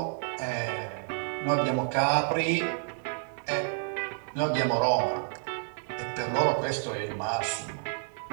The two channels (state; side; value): silent; left; 58 dB below the other